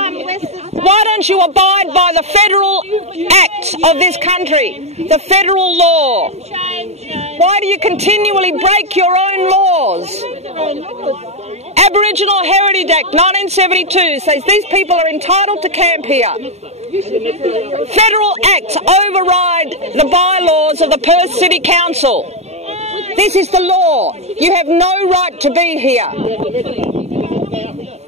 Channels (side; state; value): left; late; 0.31 ms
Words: Why don't you abide by the federal acts of this country, the federal law? Why do you continually break your own laws? Aboriginal Heritage Act 1972 says these people are entitled to camp here. Federal acts override the bylaws of the Perth City Council. This is the law. You have no right to be here.